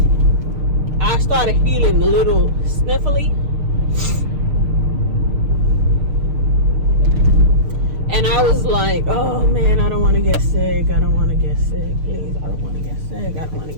I started feeling a little sniffly, and I was like, oh man, I don't want to get sick. I don't want to get sick. Please, I don't want to get sick. I don't want to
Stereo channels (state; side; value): late; left; 6.6 ms